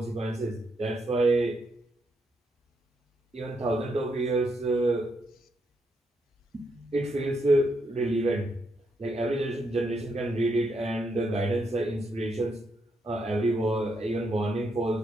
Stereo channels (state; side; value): normal; both; correlation 0.79